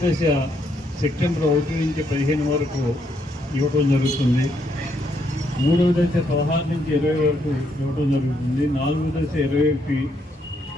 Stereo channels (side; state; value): both; normal; correlation 0.75